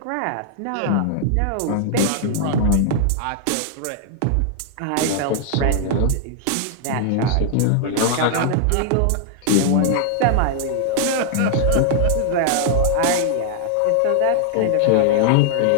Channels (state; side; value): different; both; correlation -0.01